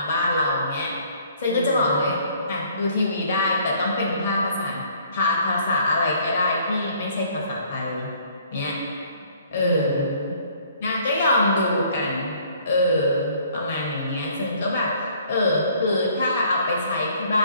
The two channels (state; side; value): inverted; both; correlation -0.59